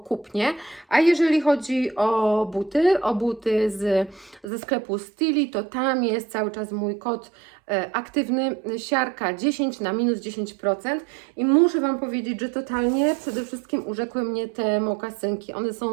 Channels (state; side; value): drops out; left; at 4.5 s